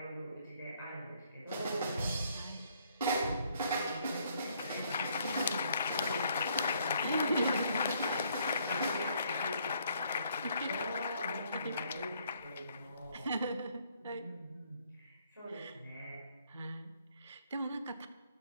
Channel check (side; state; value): both; inverted; correlation -0.67